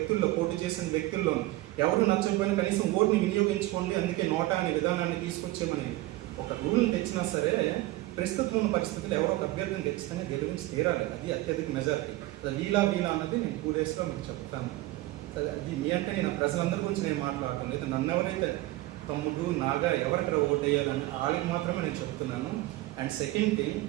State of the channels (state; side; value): quieter; left; 18.0 dB